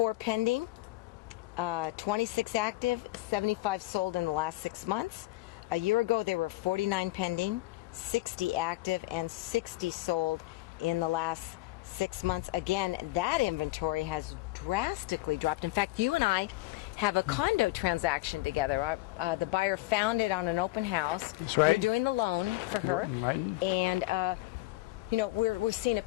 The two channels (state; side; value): quieter; right; 19.2 dB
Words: pending, 26 active, 75 sold in the last 6 months. A year ago there were 49 pending, 60 active, and 60 sold in the last 6 months. Again, that inventory has drastically dropped. In fact, you and I have a condo transaction together. The buyer found it on an open house. That's right. You're doing the loan for her. Right. And we're seeing a